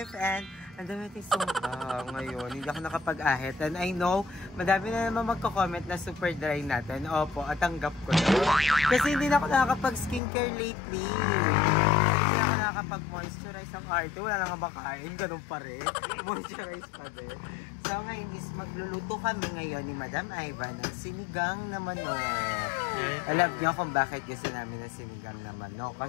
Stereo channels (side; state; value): right; drops out; at 10.2 s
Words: and ang dami natin sumpa ngayon. Hindi ako nakapag-ahit and I know madami na naman magko-comment na super dry natin. Opo, at tanggap ko na. Kasi hindi na ako nakakapag-skincare lately. Hindi ako nakakapag-moisturize ang arte. Wala lang ang makain. Ganun pa rin. Moisturize pa din. So ngayon is magluluto kami ngayon ni Madam Ivan ng sinigang na manok. Alam niyo kung bakit gusto namin ng sinigang na manok?